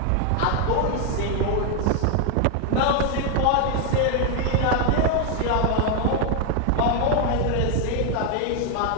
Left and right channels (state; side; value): different; both; correlation 0.01